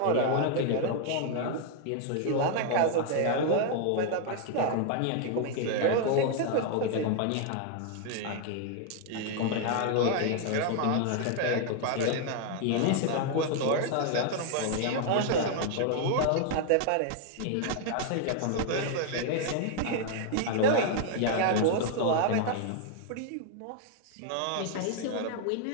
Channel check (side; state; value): both; different; correlation 0.00